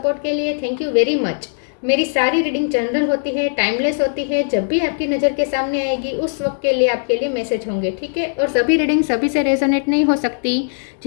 के लिए थैंक यू वेरी मच। मेरी सारी रीडिंग जनरल होती है, टाइमलेस होती है। जब भी आपकी नज़र के सामने आएगी उस वक्त के लिए आपके लिए मैसेज होंगे, ठीक है। और सभी रीडिंग सभी से रेजोनेट नहीं हो सकती।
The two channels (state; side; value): silent; right; 67 dB below the other